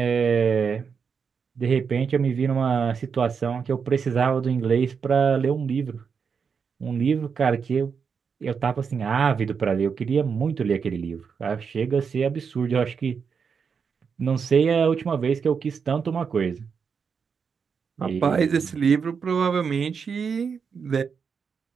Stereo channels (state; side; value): quieter; left; 6.1 dB